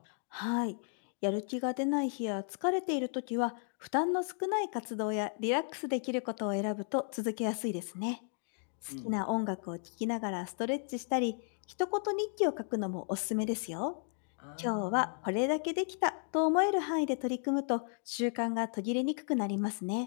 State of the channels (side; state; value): right; silent; 55 dB below the other